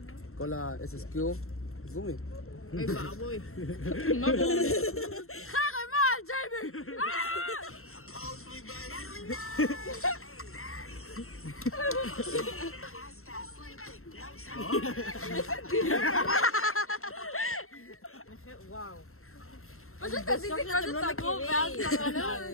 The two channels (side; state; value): right; late; 0.62 ms